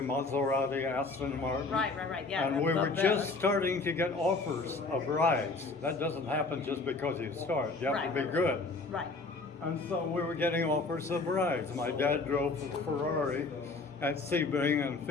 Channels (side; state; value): right; quieter; 3.7 dB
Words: Maserati, Aston Martin. Right, yeah. And we the were best. just starting to get offers of rides. That doesn't happen just because you start. You have to be Right. good. Right. And so we were getting offers of rides. My dad drove a Ferrari at Sebring in